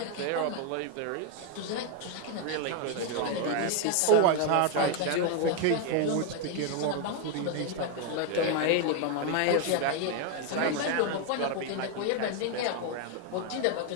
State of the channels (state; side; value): different; both; correlation 0.01